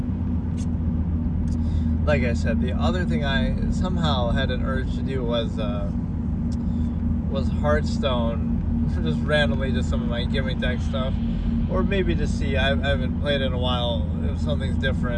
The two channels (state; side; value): identical; both; correlation 1.00